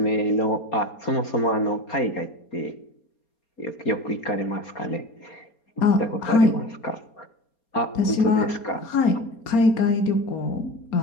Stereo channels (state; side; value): late; right; 4.3 ms